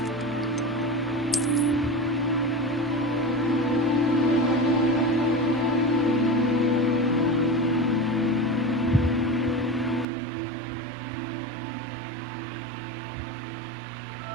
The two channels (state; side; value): drops out; left; at 10.1 s